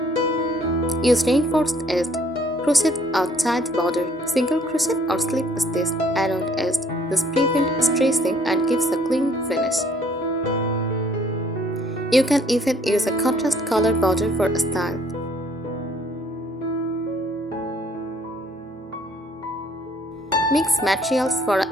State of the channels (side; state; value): both; normal; correlation 0.61